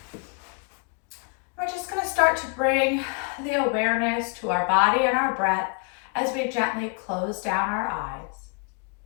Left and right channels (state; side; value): quieter; right; 36.8 dB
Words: We're just going to start to bring the awareness to our body and our breath as we gently close down our eyes.